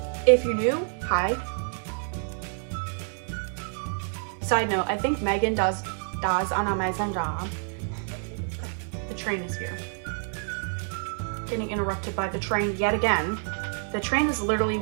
If you're new, hi. Side note, I think Megan does an amazing job. The train is here. Getting interrupted by the train yet again. The train is literally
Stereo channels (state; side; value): silent; left; 60 dB below the other